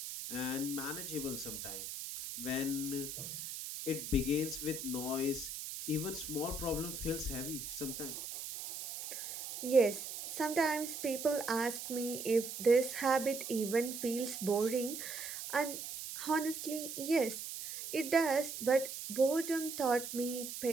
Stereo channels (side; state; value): right; noise; hiss, 7 dB below the sound